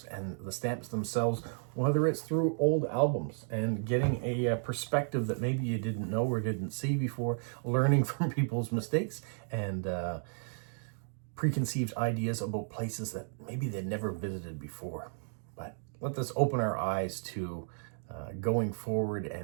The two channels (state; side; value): silent; left; digital silence